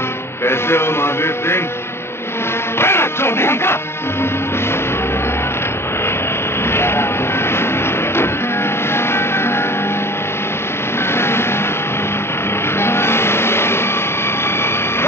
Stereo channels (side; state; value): right; late; 0.12 ms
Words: कैसे हो महावीर सिंह? चौधरी का